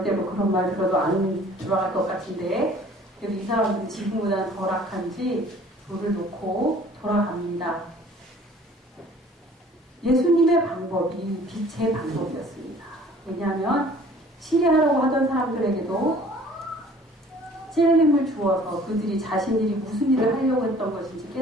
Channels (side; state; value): both; normal; correlation 0.52